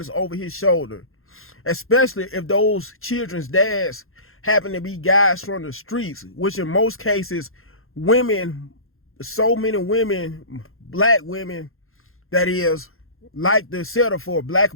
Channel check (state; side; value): late; right; 0.61 ms